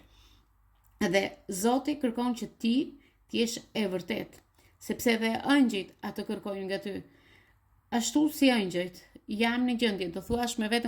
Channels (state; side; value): identical; both; correlation 1.00